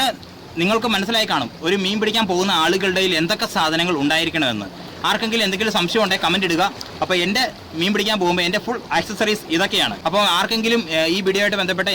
നിങ്ങൾക്ക് മനസ്സിലായി കാണും ഒരു മീൻ പിടിക്കാൻ പോകുന്ന ആളുകളുടെ എന്തൊക്കെ സാധനങ്ങൾ ഉണ്ടായിരിക്കണമെന്ന്. ആർക്കെങ്കിലും എന്തെങ്കിലും സംശയം ഉണ്ടെങ്കിൽ കമൻറ്റ് ഇടുക. അപ്പോൾ എൻ്റെ മീൻ പിടിക്കാൻ പോകുമ്പോൾ എൻ്റെ ഫുൾ ആക്സസറീസ് ഇതൊക്കെയാണ്. അപ്പോൾ ആർക്കെങ്കിലും ഈ വീഡിയോ ആയിട്ട് ബന്ധപ്പെട്ട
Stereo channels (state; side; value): identical; both; correlation 1.00